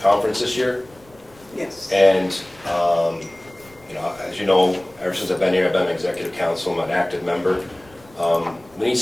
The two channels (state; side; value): noise; left; rumble, 27 dB below the sound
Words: conference this year, Yes. and, You know, as you know, ever since I've been here, I've been executive council, I'm an active member. We need